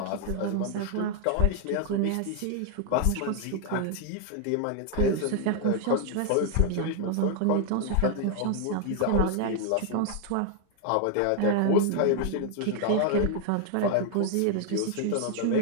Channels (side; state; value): both; different; correlation 0.00